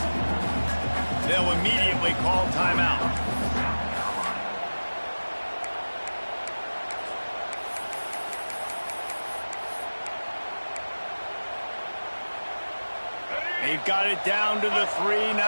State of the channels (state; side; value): inverted; both; correlation -1.00